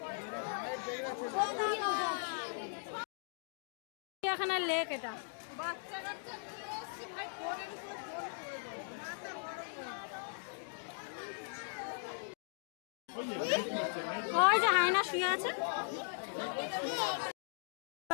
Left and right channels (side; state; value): right; silent; digital silence